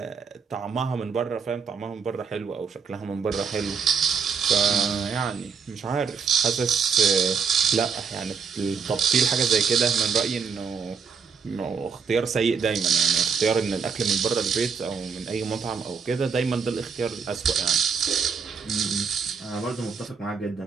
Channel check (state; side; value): quieter; left; 6.0 dB